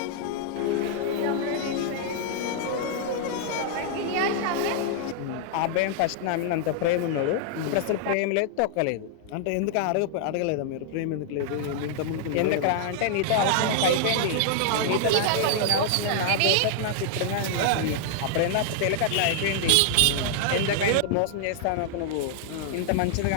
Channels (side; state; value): both; different; correlation -0.01